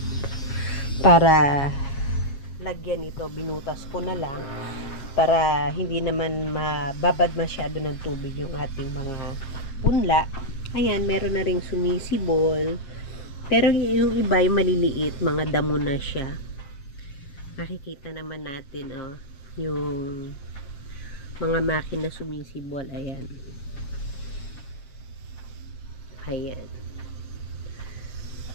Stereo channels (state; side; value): late; right; 7.4 ms